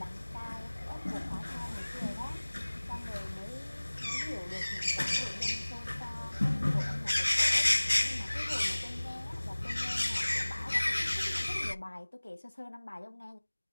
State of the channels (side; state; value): both; inverted; correlation -1.00